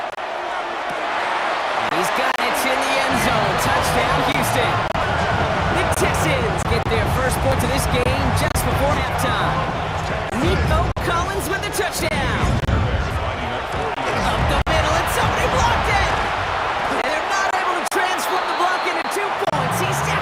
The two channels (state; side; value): identical; both; correlation 1.00